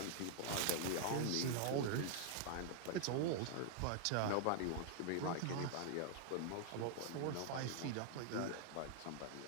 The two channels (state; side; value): different; both; correlation -0.01